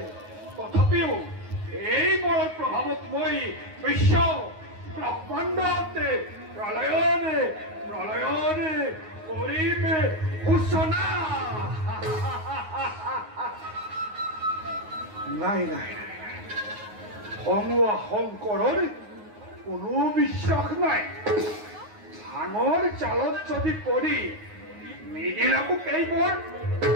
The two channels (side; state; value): left; late; 9.5 ms